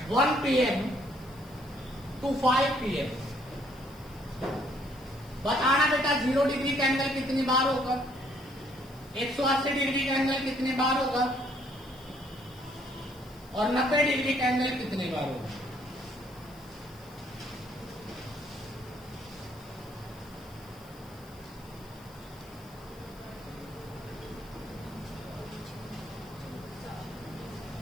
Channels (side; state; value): left; noise; hiss, 24 dB below the sound